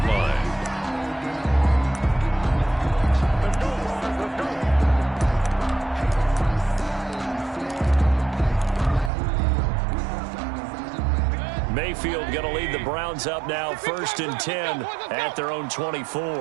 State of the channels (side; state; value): left; drops out; at 9.1 s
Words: line. Mayfield going to lead the Browns up now, first and 10 at their own 24.